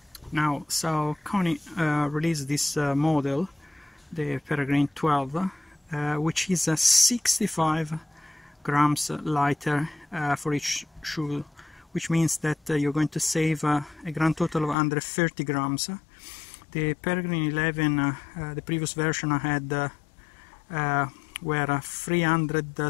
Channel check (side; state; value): right; drops out; at 14.8 s